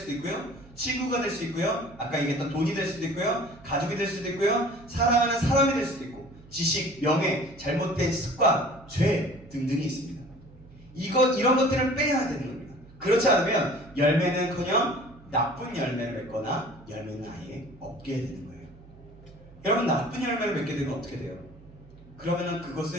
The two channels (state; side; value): noise; right; hum, 22 dB below the sound